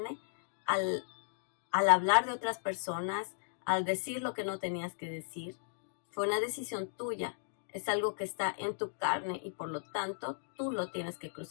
al hablar de otras personas, al decir lo que no tenías que decir. Fue una decisión tuya. Es algo que está en tu carne y por lo tanto tú lo tienes que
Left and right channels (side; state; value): right; silent; digital silence